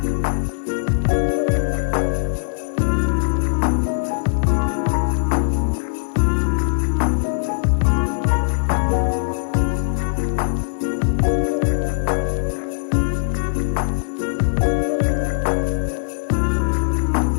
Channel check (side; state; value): right; silent; digital silence